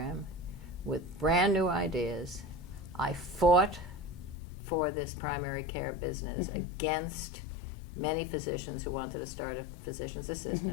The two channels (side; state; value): right; drops out; at 4.4 s